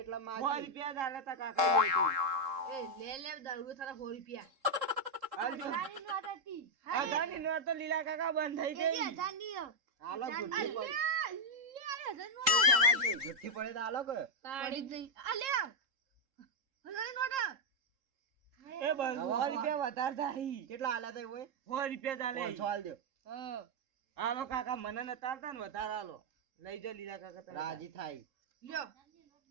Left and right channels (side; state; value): left; late; 3.7 ms